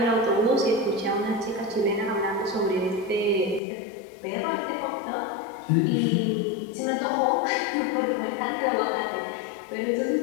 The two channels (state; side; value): drops out; right; at 3.6 s